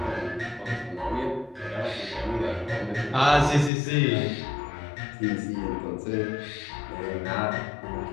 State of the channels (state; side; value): drops out; right; at 3.7 s